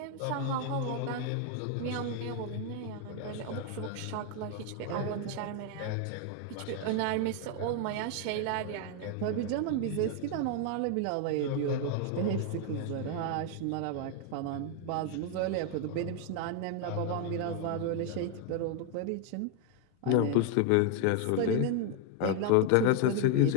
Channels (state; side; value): different; both; correlation 0.00